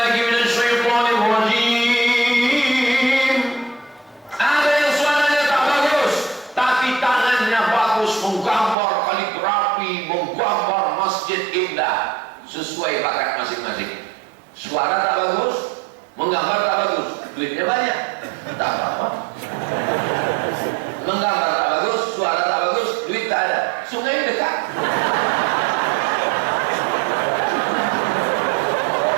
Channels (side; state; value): left; drops out; at 8.8 s